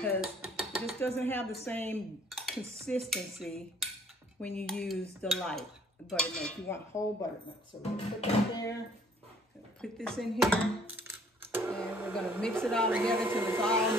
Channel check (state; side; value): normal; both; correlation 0.59